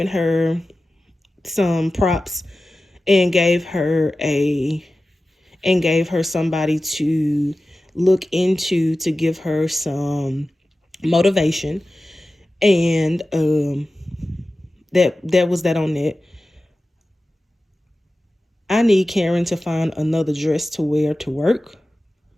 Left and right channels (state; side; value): normal; both; correlation 0.95